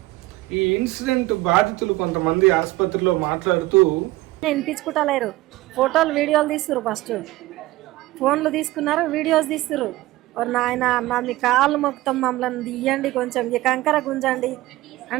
ఈ ఇన్సిడెంట్ బాధితులు కొంతమంది ఆసుపత్రిలో మాట్లాడుతూ వినిపించుకుంటలేరు, ఫోటోలు వీడియోలు తీస్తున్నారు, ఫస్ట్ ఫోన్లు తీసుకున్నారు, వీడియోస్ తీస్తున్నారు. నాయన అన్న మీ కాళ్ళు మొత్తం మమ్మల్ని తీయండి, కొంచెం ఈ కంకర గుంజండి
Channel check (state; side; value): quieter; left; 18.2 dB